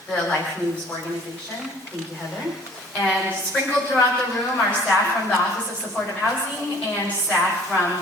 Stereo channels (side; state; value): both; normal; correlation 0.52